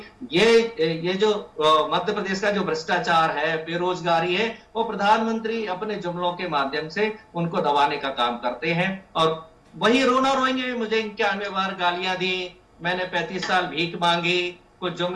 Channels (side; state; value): both; identical; correlation 1.00